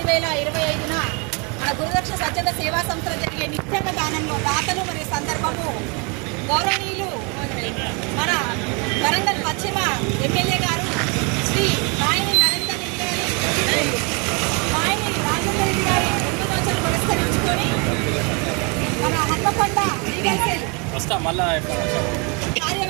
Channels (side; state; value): left; quieter; 32.5 dB